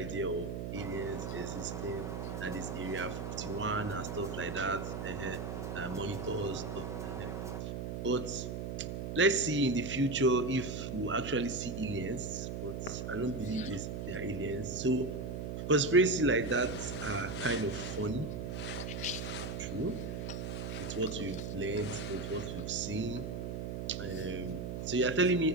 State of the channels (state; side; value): noise; right; hum, 4 dB below the sound